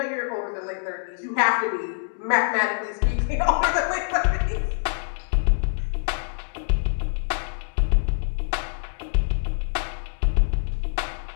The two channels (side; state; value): right; silent; digital silence